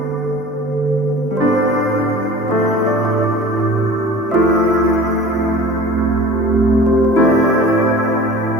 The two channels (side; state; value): both; normal; correlation 0.42